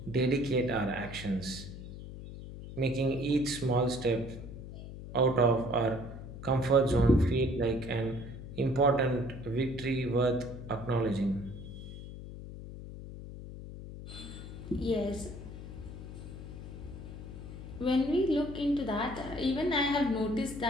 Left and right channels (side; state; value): left; noise; hum, 11 dB below the sound